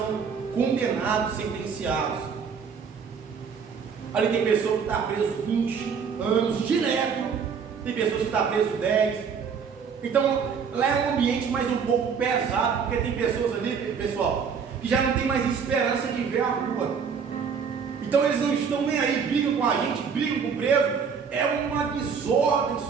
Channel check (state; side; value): quieter; left; 6.3 dB